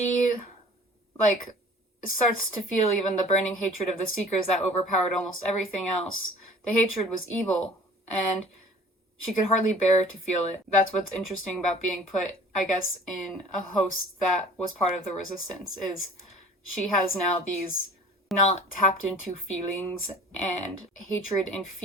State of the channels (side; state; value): both; normal; correlation 0.47